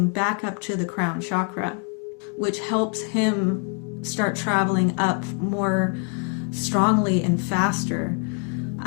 back up to the crown chakra, which helps him start traveling up more strongly and faster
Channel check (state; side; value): quieter; right; 36.7 dB